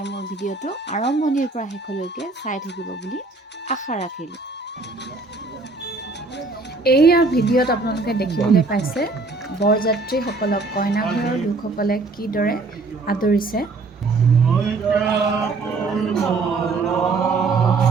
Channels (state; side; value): quieter; left; 3.8 dB